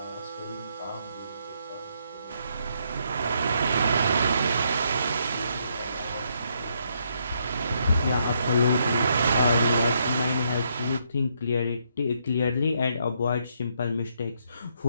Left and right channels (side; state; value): both; inverted; correlation -0.75